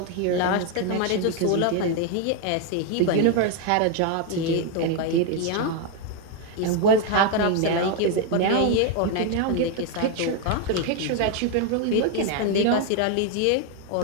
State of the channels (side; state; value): both; different; correlation 0.01